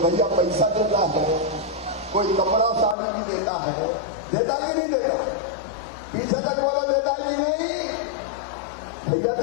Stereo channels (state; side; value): drops out; right; at 3.0 s